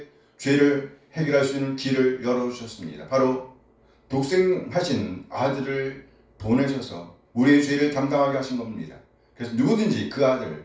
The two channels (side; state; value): both; identical; correlation 1.00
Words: 죄를 해결할 수 있는 길을 열어주셨습니다. 바로 독생하신 아들을 보내셔서 우리의 죄를 담당하게 하신 겁니다. 그래서 누구든지 그